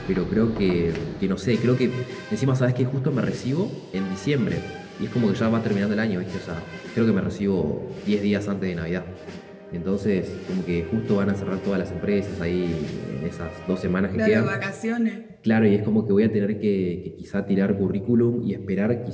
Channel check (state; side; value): identical; both; correlation 1.00